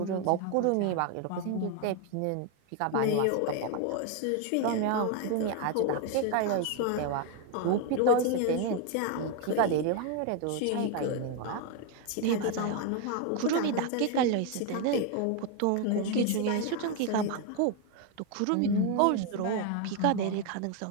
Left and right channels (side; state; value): both; different; correlation 0.01